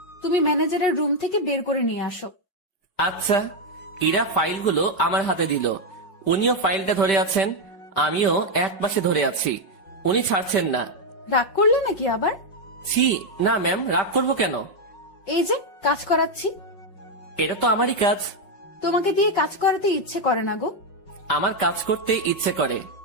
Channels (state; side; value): late; right; 5.1 ms